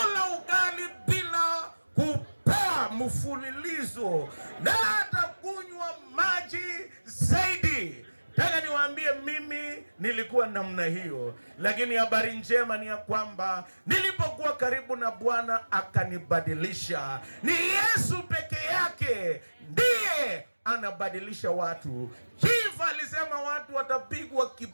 ugali bila kupaa mfululizo, na hata kunywa maji zaidi. Nataka niwaambie mimi nilikuwa namna hiyo, lakini habari njema ni ya kwamba nilipokuwa karibu na Bwana akanibadilisha. Ni Yesu peke yake ndiye anabadilisha watu. Chief alisema watu watapigwa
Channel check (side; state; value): both; inverted; correlation -1.00